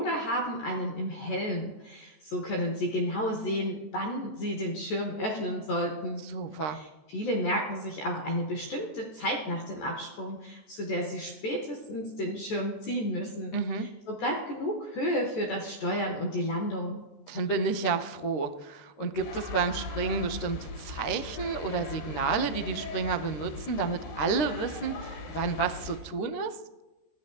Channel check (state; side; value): late; right; 14 ms